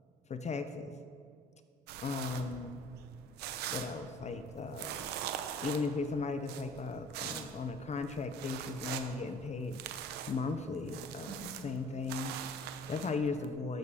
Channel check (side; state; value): both; normal; correlation 0.49